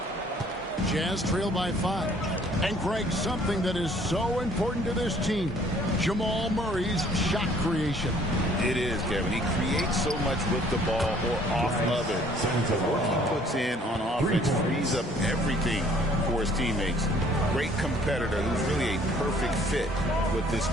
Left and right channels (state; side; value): normal; both; correlation 0.58